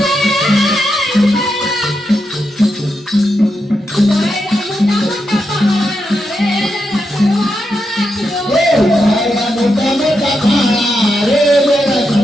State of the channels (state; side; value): normal; both; correlation 0.85